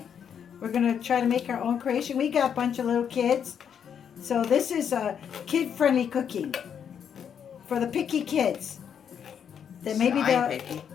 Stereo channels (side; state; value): right; quieter; 8.0 dB